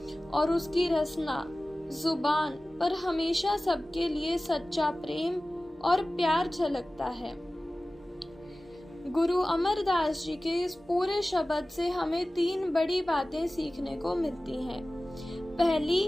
और उसकी रसना जुबान पर हमेशा सबके लिए सच्चा प्रेम और प्यार झलकता है। गुरु अमरदास जी के इस पूरे शब्द से हमें 3 बड़ी बातें सीखने को मिलती हैं। पहली,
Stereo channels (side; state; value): both; normal; correlation 0.97